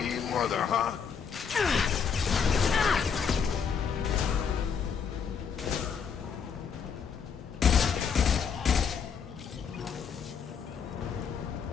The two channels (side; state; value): right; quieter; 6.6 dB